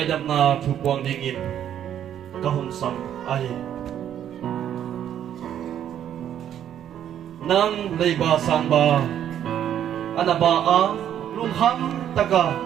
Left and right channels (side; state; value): left; quieter; 10.2 dB